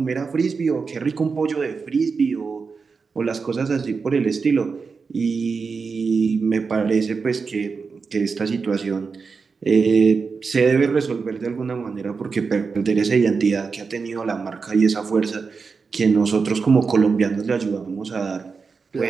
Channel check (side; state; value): left; quieter; 5.0 dB